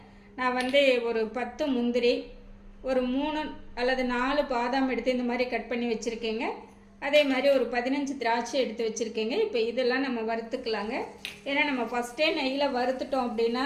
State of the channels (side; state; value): both; identical; correlation 1.00